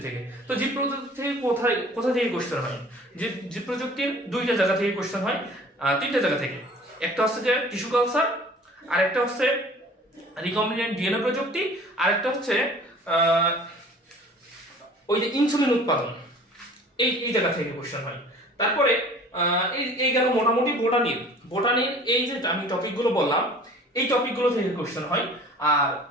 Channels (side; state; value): both; normal; correlation 0.47